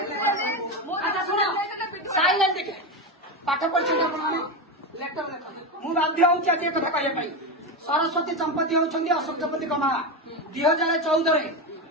मु अच्छा सुनो साइलेंट देखे पाठ पढ़छ आपण माने लेटर मु बाध्य होछि आज कथा कहय पई सरस्वती संपत्ति होछंदी अशोक संपत्ति कमा 2014 रे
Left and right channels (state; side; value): normal; both; correlation 0.15